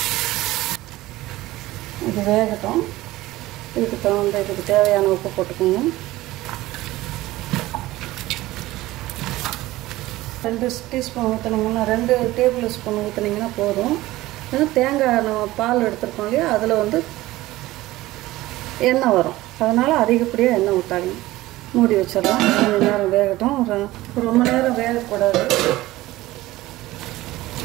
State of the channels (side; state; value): left; quieter; 17.5 dB